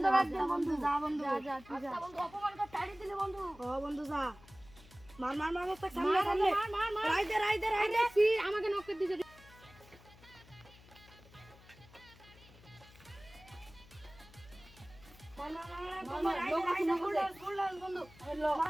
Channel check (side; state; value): left; noise; hum, 23 dB below the sound